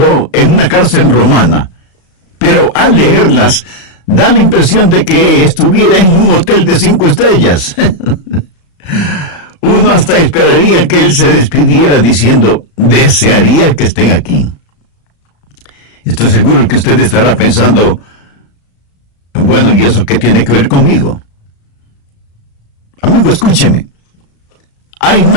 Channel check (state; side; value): late; right; 35 ms